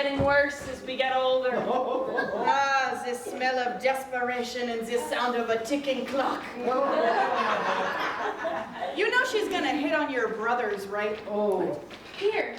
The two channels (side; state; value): both; identical; correlation 1.00